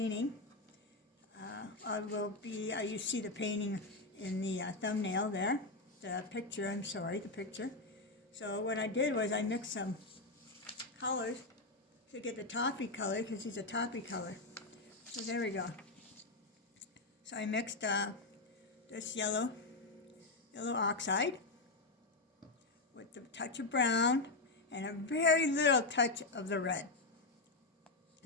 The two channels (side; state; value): right; quieter; 3.2 dB